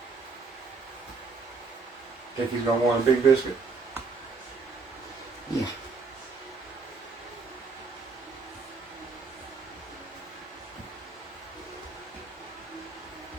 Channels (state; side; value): quieter; left; 4.4 dB